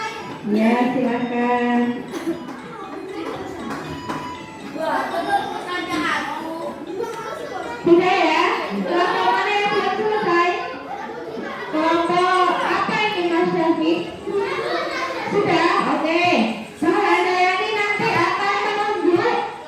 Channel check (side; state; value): both; identical; correlation 1.00